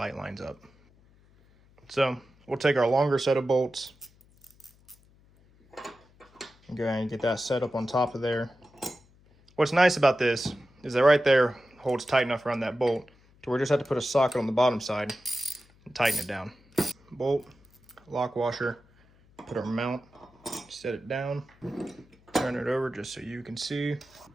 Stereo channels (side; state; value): left; noise; hum, 30 dB below the sound